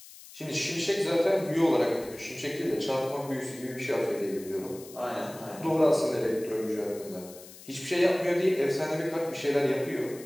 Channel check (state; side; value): noise; left; hiss, 18 dB below the sound